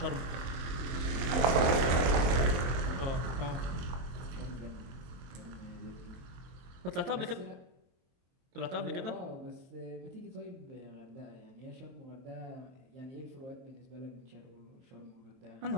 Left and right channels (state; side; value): late; left; 23 ms